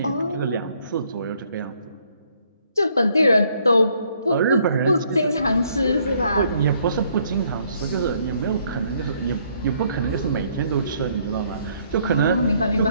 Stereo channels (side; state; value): both; inverted; correlation -0.67